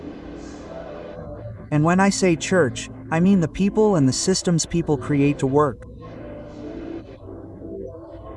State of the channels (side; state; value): both; identical; correlation 1.00